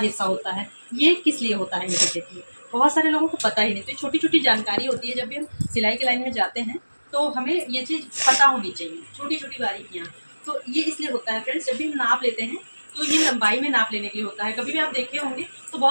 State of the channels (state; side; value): inverted; both; correlation -1.00